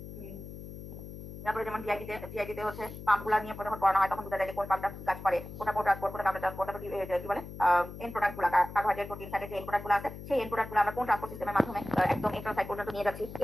তারপরে যেমন জিআইটিতে হচ্ছে পাম্পগুলো নিয়ে যখন পড়ানো হয় তখন বোঝা যায় যে কোন পাম্পটা কাজ করে, কোনটা ট্রান্সপোর্ট, কোনটা কাউন্টার ট্রান্সপোর্ট, তারপর কি বলে এন্ড প্রোডাক্টগুলো, কার্বোহাইড্রেট, প্রোটিন, ফ্যাটের যে এন্ড প্রোডাক্টগুলো আছে সেই এন্ড প্রোডাক্টগুলো আমরা কোন ট্রান্সপোর্ট সিস্টেমের মাধ্যমে একদম এন্ট্রাল সাইট পর্যন্ত নিয়ে যাচ্ছি,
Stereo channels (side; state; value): left; noise; hum, 12 dB below the sound